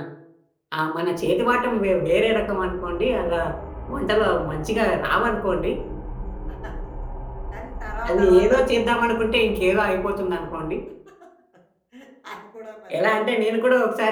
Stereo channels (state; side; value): identical; both; correlation 1.00